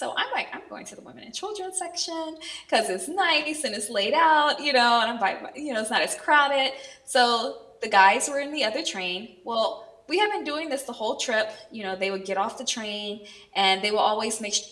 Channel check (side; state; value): both; identical; correlation 1.00